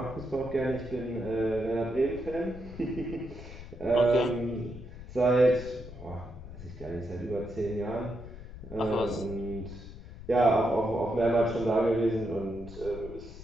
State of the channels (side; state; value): left; noise; rumble, 13 dB below the sound